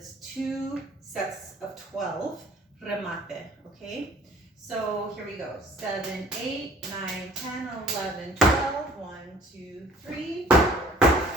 2 sets of 12 remate, okay? So here we go, 7, 8, 9, 10, 11, 12, 1, 2, 3, 4,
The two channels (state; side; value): normal; both; correlation 0.53